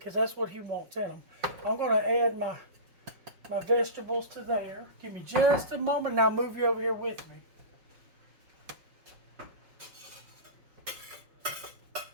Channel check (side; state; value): left; late; 5.5 ms